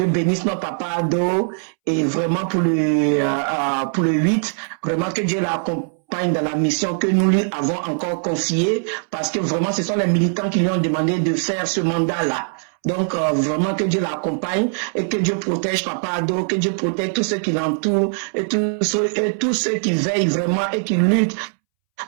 bénisse nos papas Ado, et vraiment pour le 8, vraiment que Dieu l'accompagne dans la mission que nous lui avons encore confiée, parce que vraiment ce sont les militants qui lui ont demandé de faire ce mandat-là. Donc vraiment que Dieu l'accompagne et que Dieu protège Papa Ado, que Dieu protège tous ceux qui l'entourent et tous ceux qui veillent vraiment et qui luttent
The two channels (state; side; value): silent; left; 65 dB below the other